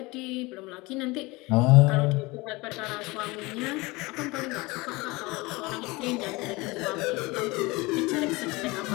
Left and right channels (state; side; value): quieter; right; 23.3 dB